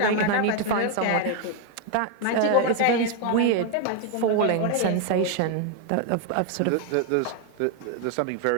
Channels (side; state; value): both; different; correlation 0.01